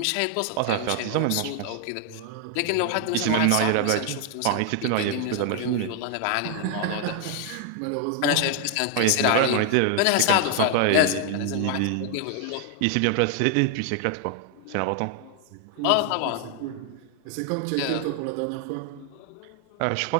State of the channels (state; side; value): different; both; correlation 0.00